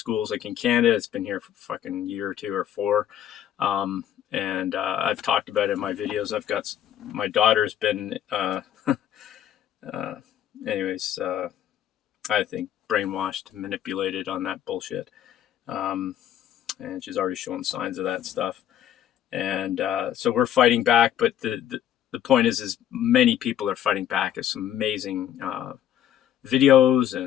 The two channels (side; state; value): right; quieter; 10.9 dB